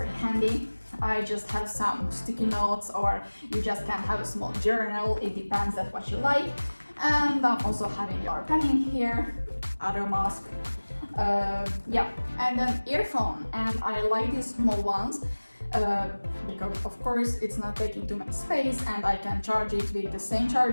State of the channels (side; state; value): both; inverted; correlation -1.00